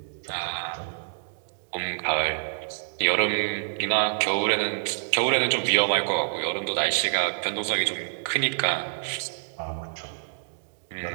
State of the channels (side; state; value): left; silent; digital silence